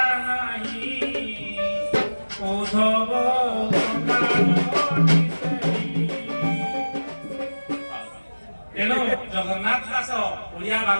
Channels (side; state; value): both; inverted; correlation -1.00